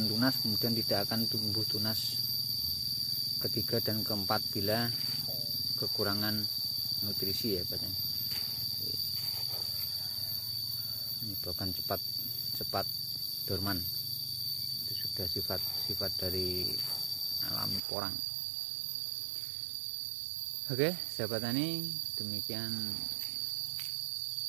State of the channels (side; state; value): left; drops out; at 17.8 s